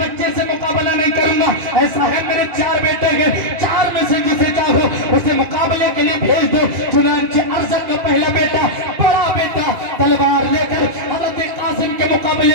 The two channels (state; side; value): late; left; 2.4 ms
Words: سے مقابلہ نہیں کروں گا. ایسا ہے میرے 4 بیٹے ہیں, 4 میں سے جسے چاہو اسے مقابلے کے لیے بھیج دو. چنانچہ ارزق کا پہلا بیٹا, بڑا بیٹا تلوار لے کر حضرت قاسم کے